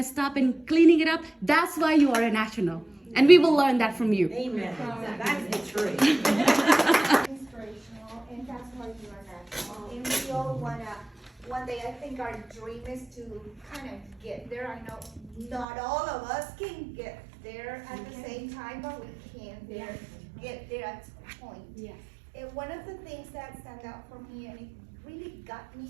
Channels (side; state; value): left; drops out; at 15.7 s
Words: up and cleaning it up, that's why you are a national. And we will learn that from you. Amen. That's the truth. Inspirational, and that's why you are national. And we all wanna, one day, I think our dream is to kind of get there. I know not all of us can get there at the same time, but we can get there at some point. Yeah. And one of the things that stand out for me, and it really got me